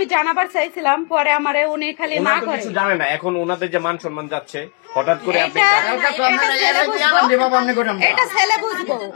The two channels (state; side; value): quieter; right; 33.8 dB